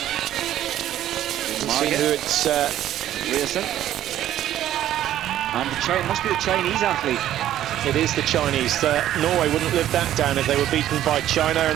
See who it's... Rearson. And it must be the Chinese athlete. It is the Chinese. Norway wouldn't live that down if they were beaten by China,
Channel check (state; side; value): quieter; left; 12.3 dB